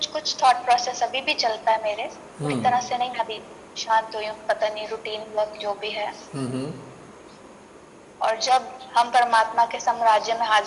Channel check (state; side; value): identical; both; correlation 1.00